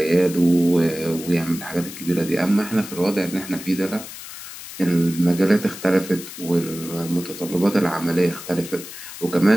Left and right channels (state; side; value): noise; left; hiss, 12 dB below the sound